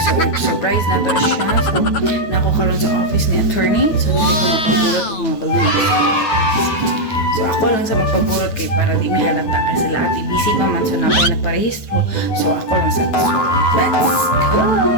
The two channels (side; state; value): right; late; 9.2 ms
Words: So, surprise na to siya. So, nako karon sa office ni attorney. So, dili ko magpaburot ng mga balloon. So, ako lang sa magpaburot kay para di may halata kasi sila ati busy pa man. So, napay nagparehistro. So, ako lang sa let's